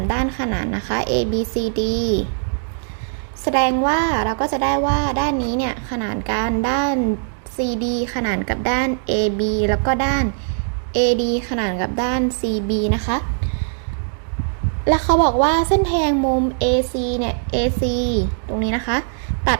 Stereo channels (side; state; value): left; silent; digital silence